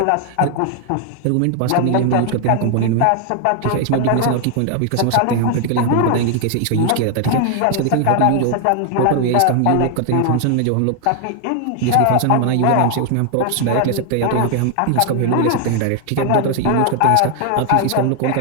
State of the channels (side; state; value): both; different; correlation 0.00